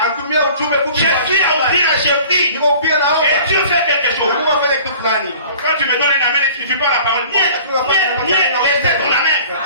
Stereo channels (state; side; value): inverted; both; correlation -0.47